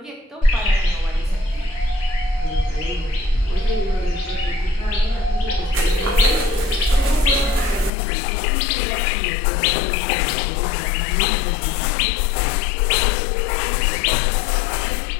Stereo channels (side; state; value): right; drops out; at 7.9 s